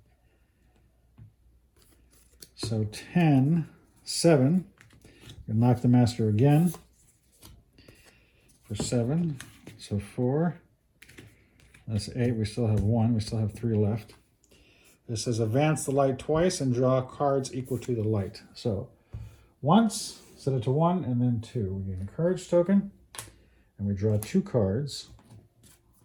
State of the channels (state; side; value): identical; both; correlation 1.00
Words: So 10, 7. We knock the master again for 7. So 4. That's 8. We still have 1. We still have 3 left. This says advance the light twice and draw cards equal to the light. So once, set it to 1, and then 2. We gain a courage token, and we draw 2 cards,